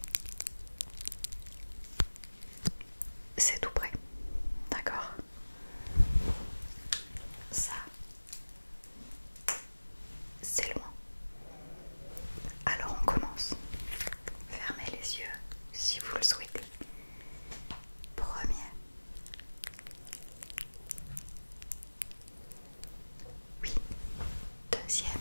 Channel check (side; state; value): both; inverted; correlation -1.00